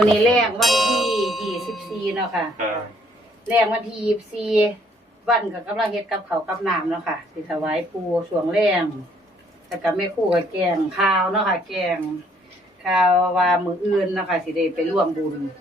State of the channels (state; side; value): normal; both; correlation 0.65